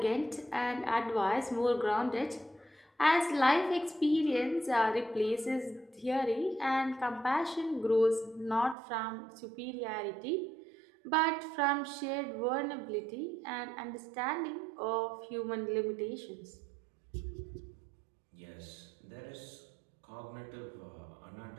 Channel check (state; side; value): drops out; left; at 8.8 s